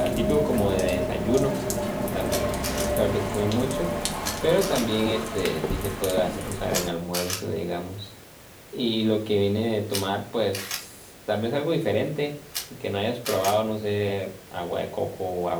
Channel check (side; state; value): both; identical; correlation 1.00